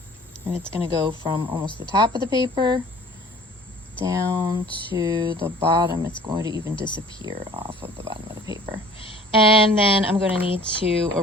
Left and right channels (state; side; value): normal; both; correlation 0.49